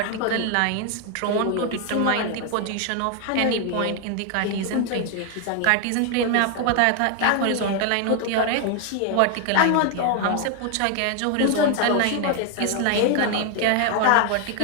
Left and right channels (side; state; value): both; different; correlation 0.01